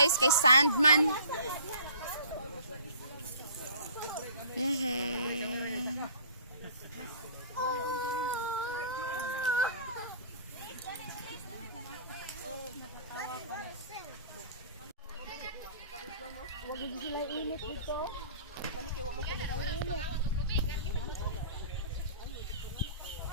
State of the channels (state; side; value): inverted; both; correlation -0.48